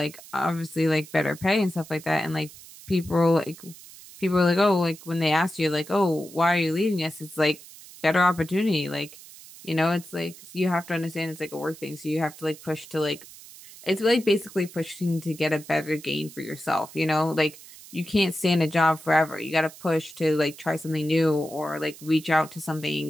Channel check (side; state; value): right; noise; hiss, 18 dB below the sound